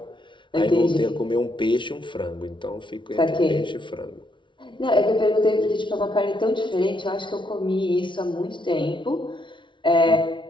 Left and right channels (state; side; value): late; right; 0.24 ms